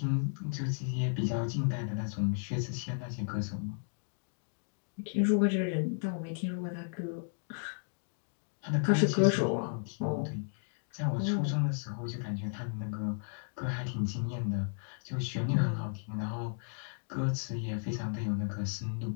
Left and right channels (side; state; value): right; silent; digital silence